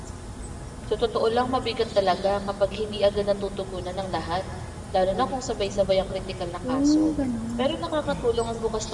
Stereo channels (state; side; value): identical; both; correlation 1.00